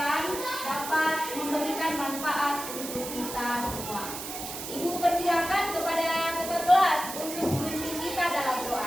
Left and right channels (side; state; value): right; noise; hiss, 8 dB below the sound